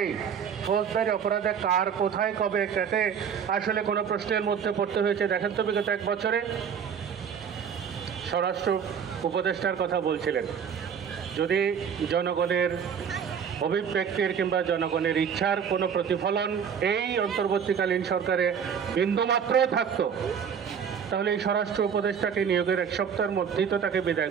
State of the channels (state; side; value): quieter; left; 7.4 dB